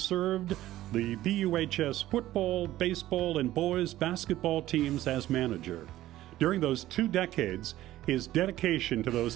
the BUHS football, baseball, and boys basketball teams as manager. During those 2 decades, his dedication to those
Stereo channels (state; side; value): quieter; left; 14.7 dB